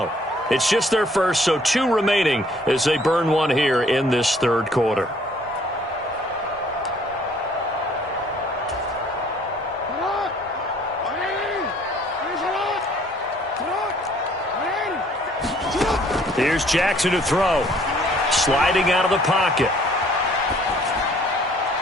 It's just their first, so 2 remaining as they burn one here in this third quarter. Here's Jackson to throw. Sliding out of the pocket.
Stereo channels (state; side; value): normal; both; correlation 0.59